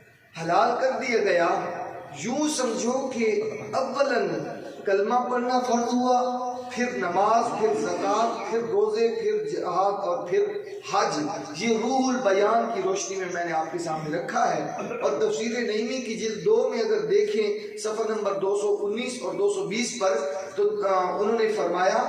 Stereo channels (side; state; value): both; identical; correlation 1.00